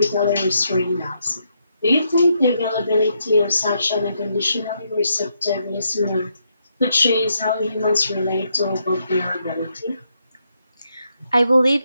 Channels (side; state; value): both; inverted; correlation -0.78